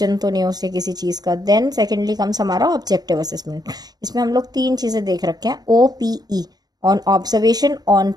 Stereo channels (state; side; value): late; left; 0.19 ms